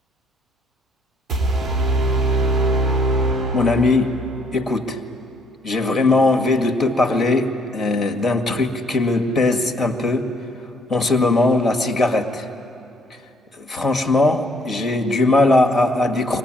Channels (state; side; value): normal; both; correlation 0.65